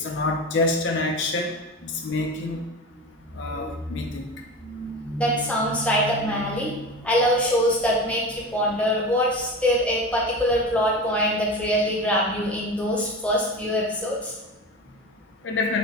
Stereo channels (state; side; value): normal; both; correlation 0.29